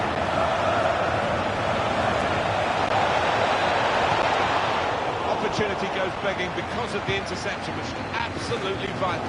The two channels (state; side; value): identical; both; correlation 1.00